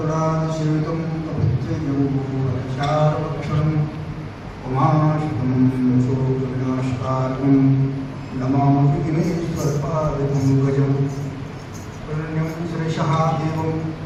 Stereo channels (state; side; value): identical; both; correlation 1.00